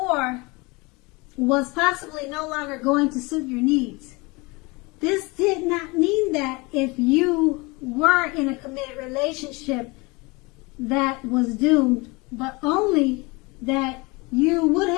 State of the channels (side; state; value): right; quieter; 25.8 dB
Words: was possibly no longer going to suit your needs. This did not mean that if you were in a committed relationship that was doomed, but only that you would